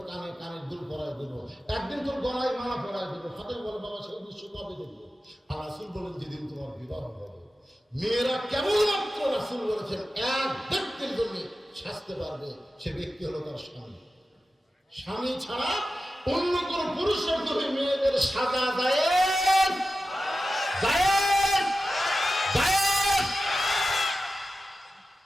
কানে কানের দুল পরায় দেবো, একদিন তোর গলায় মালা পরায় দেবো। ফাতেমা বলে, বাবা, সেই দৃশ্য কবে দেখবো? আর রাসূল বলেন, যেদিন তোমার বিবাহ হবে। মেয়েরা কেবলমাত্র রাসূল বলেছেন এক ব্যক্তির জন্য সাজতে পারবে, সে ব্যক্তি হলো তার স্বামী। স্বামী ছাড়া অন্য কোন পুরুষের জন্য মেয়েদের সাজা জায়েজ, জায়েজ, জায়েজ।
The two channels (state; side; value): normal; both; correlation 0.93